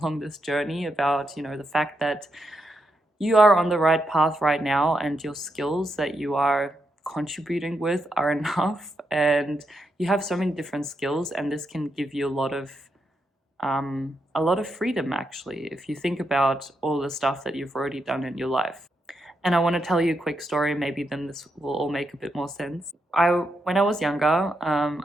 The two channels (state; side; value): normal; both; correlation 0.83